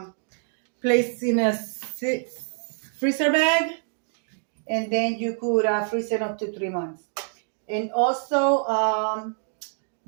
place in a freezer bag, and then you could freeze it up to 3 months. And also,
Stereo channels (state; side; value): silent; left; 61 dB below the other